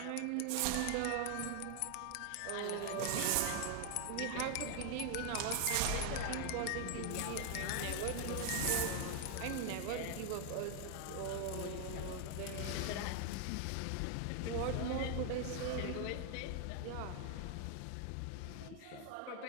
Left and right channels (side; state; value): both; different; correlation 0.00